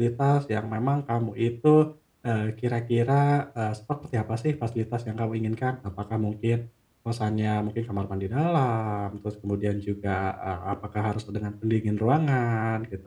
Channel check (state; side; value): identical; both; correlation 1.00